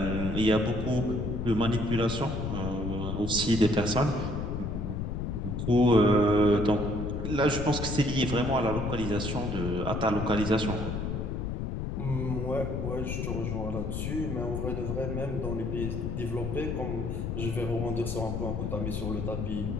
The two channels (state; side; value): noise; left; rumble, 3 dB below the sound